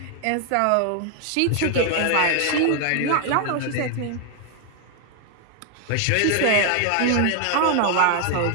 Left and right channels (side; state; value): both; different; correlation 0.00